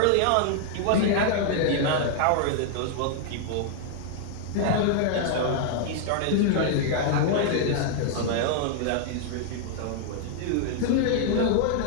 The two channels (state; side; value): different; both; correlation 0.00